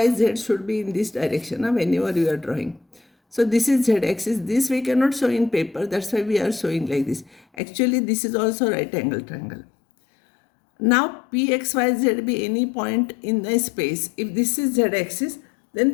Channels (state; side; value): drops out; right; at 7.4 s